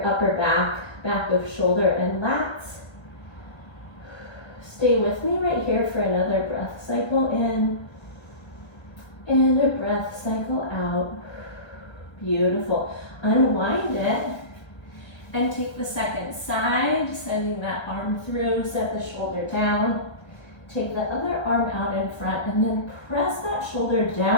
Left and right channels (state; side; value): late; right; 1.3 ms